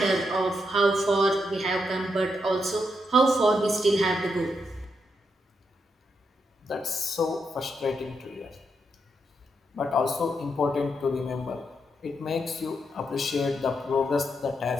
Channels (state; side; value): normal; both; correlation 0.81